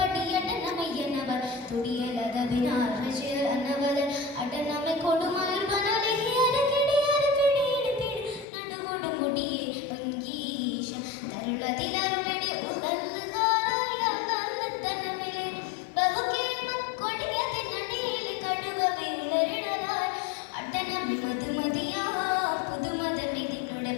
തുടിയലതവിനാൽ റജിയനവർ അടനമെ കൊടുമാർ വനലഹിയര കിടിയര പിടിയിട് പിടി നടുവോട് മുടിയെ ഭംഗീശ തരുളതിലരുളടെ ഉദൽഹാരായ തനമിലെ ബഹുകേമക്കൊടിയതിനടിയിലെ കടുകവയുളരിടലായി അടനമി മധുമതിയാ പുതുമതമിതിനുടെ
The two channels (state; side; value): drops out; right; at 8.5 s